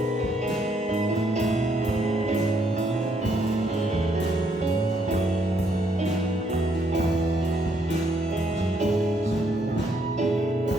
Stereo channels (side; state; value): both; normal; correlation 0.72